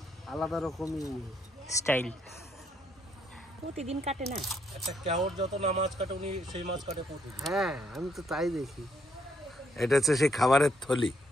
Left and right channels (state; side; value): normal; both; correlation 0.72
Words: আলাদা রকমই স্টাইল। প্রতিদিন কাটে না, একটা কেওর যত না মাছ কাটে উনি সেই মাছ কাটে প্রতিদিন। হ্যাঁ, আমি তো তাই দেখি। এটা হচ্ছে সেই খাবারের থলি,